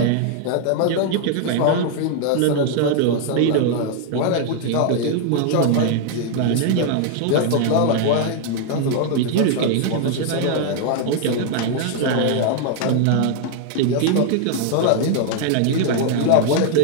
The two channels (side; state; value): both; different; correlation 0.00